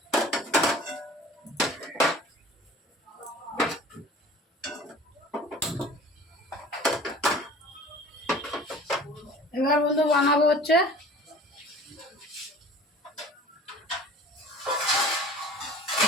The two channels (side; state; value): both; normal; correlation 0.45